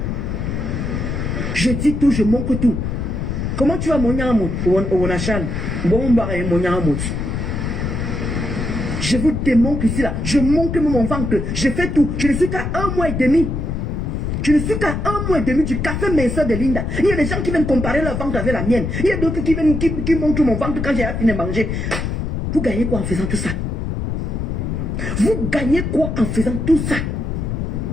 Je dis tout, je manque tout. Comment tu vas mon yamot au Nachal? Bon, mon yamot. Je vous démontre ici là. Je montre mon ventre. Je fais tout. Je ne suis qu'à 1 mois et demi. Je ne suis qu'à 1 mois et demi du café minceur de Linda. Il y a des gens qui viennent comparer leur ventre avec la mienne. Il y a d'autres qui viennent qui montrent mon ventre quand j'ai fini de manger. Vous gagnez quoi en faisant tout ça? Vous gagnez quoi en faisant tout ça?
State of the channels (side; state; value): left; noise; rumble, 2 dB below the sound